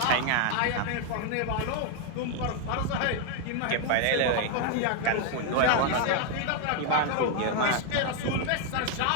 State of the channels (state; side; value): different; both; correlation 0.01